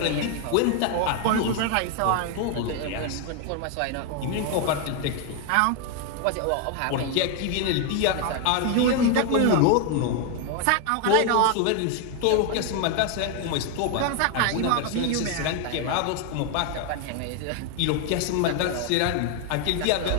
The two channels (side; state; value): both; different; correlation 0.01